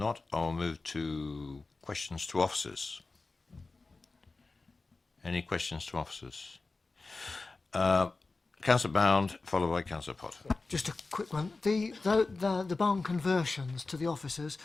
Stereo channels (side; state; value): right; quieter; 3.7 dB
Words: I'll move to questions to officers. Any questions to officers? Councillor Bound, followed by Councillor Potter. Just a quick one. The barn conversions to the officers,